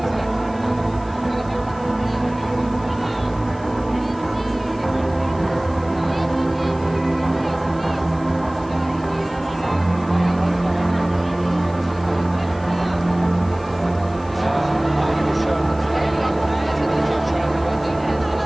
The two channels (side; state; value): left; noise; hiss, 26 dB below the sound